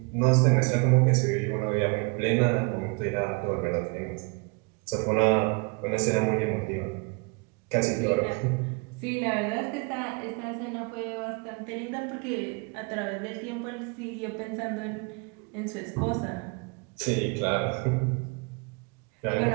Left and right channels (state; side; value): quieter; left; 31.5 dB